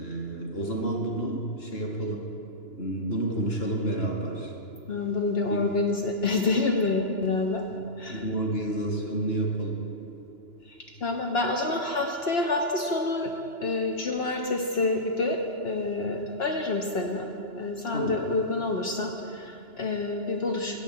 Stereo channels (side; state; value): right; late; 2.9 ms